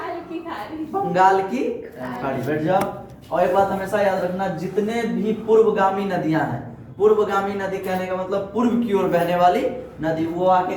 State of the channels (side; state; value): both; identical; correlation 1.00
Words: बंगाल की खाड़ी। बैठ जाओ। और एक बात हमेशा याद रखना, जितने भी पूर्वगामी नदियां हैं, पूर्वगामी नदी कहने का मतलब पूर्व की ओर बहने वाली नदी, वो आके